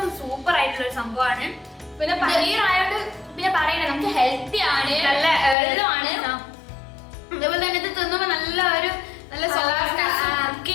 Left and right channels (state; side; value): drops out; right; at 5.6 s